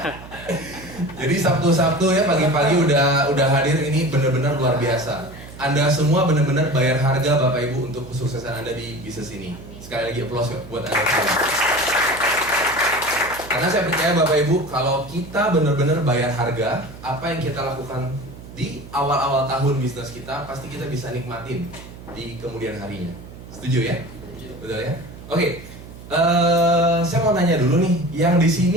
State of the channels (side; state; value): right; noise; hum, 16 dB below the sound